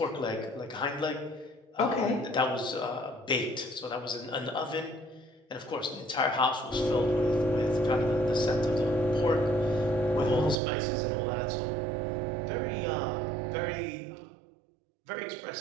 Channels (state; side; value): drops out; left; at 10.6 s